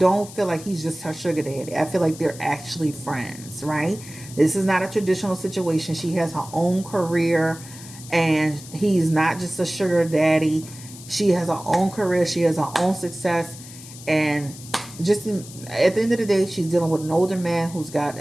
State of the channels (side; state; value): left; noise; hiss, 16 dB below the sound